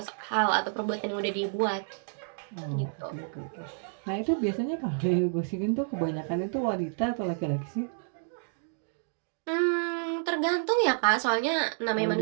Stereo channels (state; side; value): silent; left; digital silence